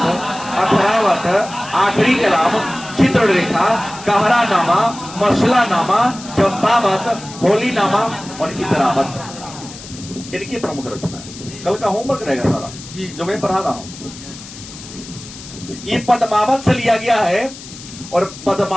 अखरावत, आखिरी कलाम, चित्ररेखा, कहरा नामा, मसला नामा, चंपावत, होली नामा और इतरावत। इनकी प्रमुख रचना है। कल का होमवर्क रहेगा सारा जो मैं पढ़ा रहा हूं, ये पद्मावत से लिया गया है। और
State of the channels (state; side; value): noise; left; hiss, 15 dB below the sound